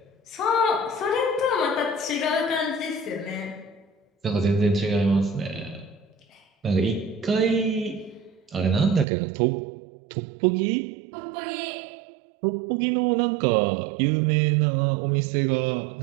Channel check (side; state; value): left; drops out; at 9.1 s